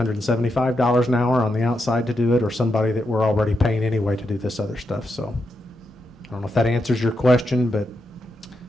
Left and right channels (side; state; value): both; normal; correlation 0.84